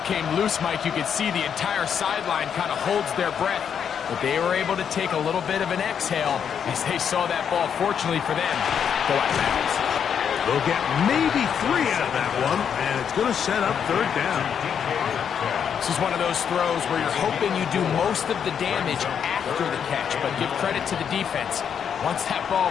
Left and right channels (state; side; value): quieter; right; 7.8 dB